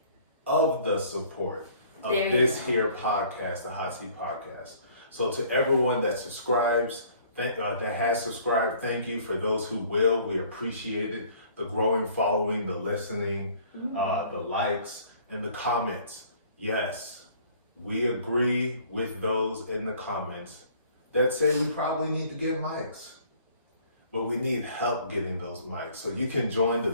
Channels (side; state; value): both; inverted; correlation -0.55